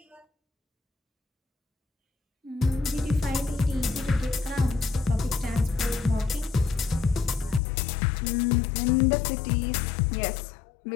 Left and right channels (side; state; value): right; drops out; at 7.6 s